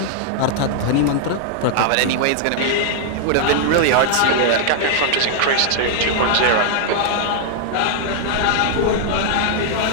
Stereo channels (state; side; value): different; both; correlation -0.01